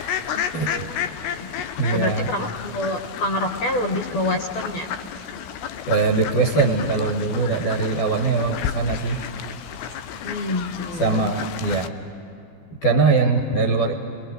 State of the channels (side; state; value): right; late; 12 ms